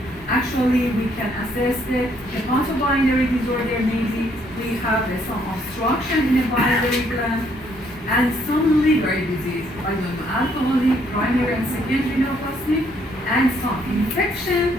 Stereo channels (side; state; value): both; normal; correlation 0.68